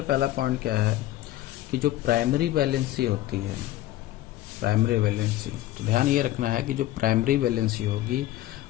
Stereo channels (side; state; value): right; quieter; 15.0 dB